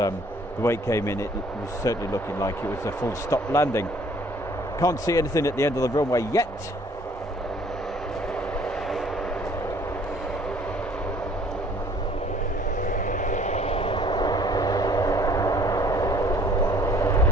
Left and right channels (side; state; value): both; normal; correlation 0.56